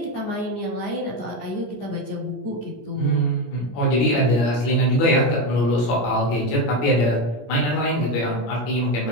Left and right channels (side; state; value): right; late; 17 ms